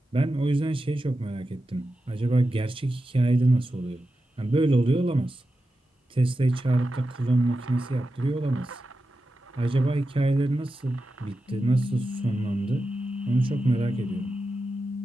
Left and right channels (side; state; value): both; normal; correlation 0.91